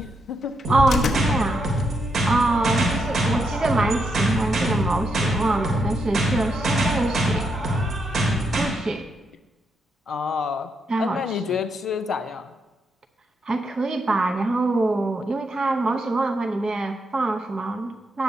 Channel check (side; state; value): both; normal; correlation 0.80